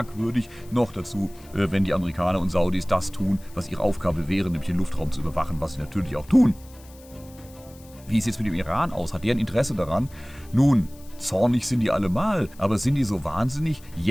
Noch dazu, wenn die Amerikaner und Saudis das tun, was ihre Aufgabe wäre, nämlich den Luftraum zu überwachen, was sie natürlich auch tun. Wie sieht es mit dem Iran aus? Hat der ein Interesse daran? Nun, zornig sind die allemal, aber sind die so wahnsinnig,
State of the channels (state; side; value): noise; left; hiss, 24 dB below the sound